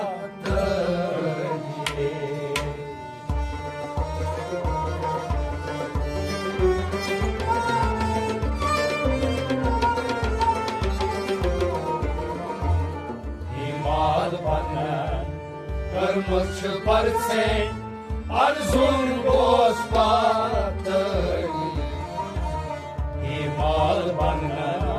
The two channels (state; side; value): identical; both; correlation 1.00